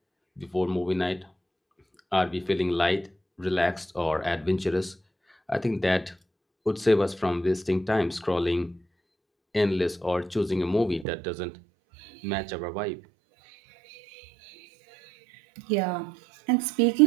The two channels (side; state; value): left; drops out; at 11.1 s